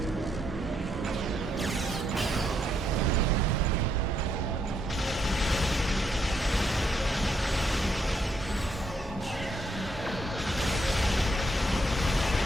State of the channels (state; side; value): normal; both; correlation 0.76